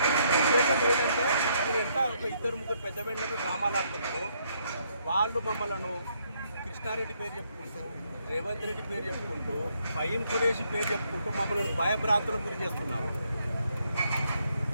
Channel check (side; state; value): both; inverted; correlation -0.73